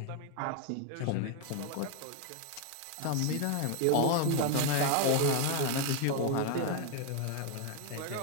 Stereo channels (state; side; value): different; both; correlation 0.01